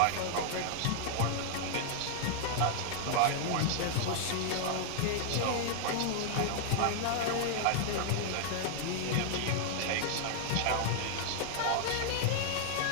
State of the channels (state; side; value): different; both; correlation -0.01